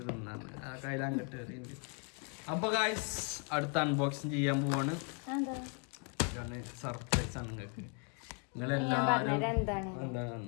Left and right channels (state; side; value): quieter; right; 35.9 dB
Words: തിന്നാണ് ആ കയ്യിൽ അങ്ങോട്ട് എറിയുണ്ട് അപ്പൊ ഗായ്സ് അടുത്ത അൺബോക്സിങ് ചെയ്യാൻ പോവാണ് ഇതാണ് സർപ്രൈസ് ആണ് നിങ്ങൾക്ക് നിങ്ങളെല്ലാരും